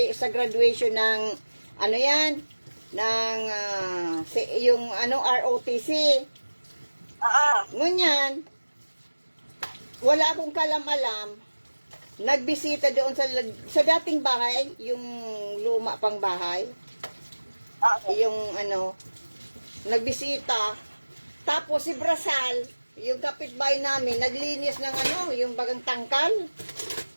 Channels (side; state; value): both; inverted; correlation -1.00